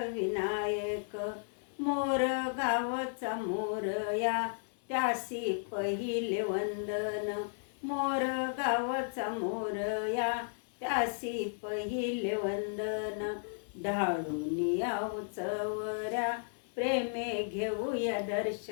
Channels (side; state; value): right; silent; digital silence